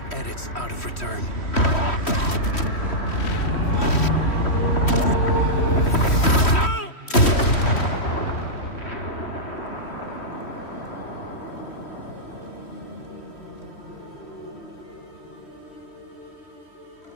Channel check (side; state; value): right; late; 3.1 ms